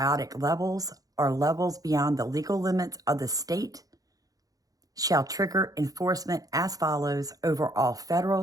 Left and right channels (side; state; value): left; late; 0.17 ms